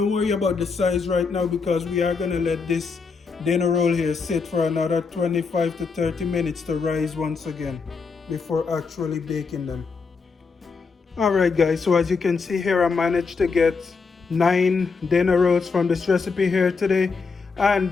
worry about the size right now, because we are going to let this dinner roll here sit for another 25 to 30 minutes to rise once again before actually baking them. Alright guys, so as you can see here, I managed to get 9 dinner rolls from this recipe here today,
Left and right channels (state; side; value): quieter; right; 4.8 dB